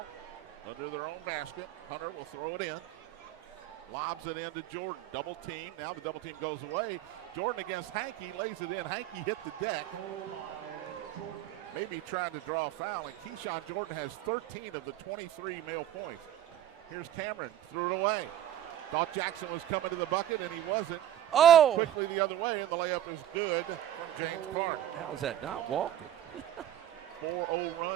under their own basket. Hunter will throw it in. Lobs it in to Jordan. Double team. Now the double team goes away. Jordan against Hankey. Lays it in. Hankey hit the deck. Maybe trying to draw a foul. And Keyshawn Jordan has 13 of the 23 male points. Here's Cameron. Threw it away. Thought Jackson was coming to the bucket, and he wasn't. Oh! Quickly the other way, and the layup is good from James Clark. How is that not walking? 4-0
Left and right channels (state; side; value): quieter; left; 11.7 dB